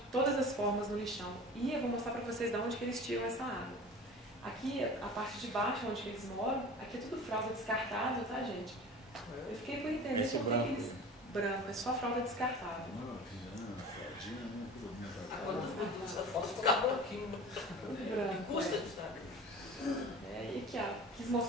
todas as formas no lixão. E eu vou mostrar para vocês de onde que eles tiram essa água. Aqui, a parte de baixo, onde que eles moram, aqui é tudo fralda descartável, tá, gente? Eu fiquei por entender por que eles... Branco, é só fralda descartável. Não, fraldinha, né? Essa foto fica branquinho. Branco. Custa, sabe? E aqui, ó, quis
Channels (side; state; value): both; normal; correlation 0.38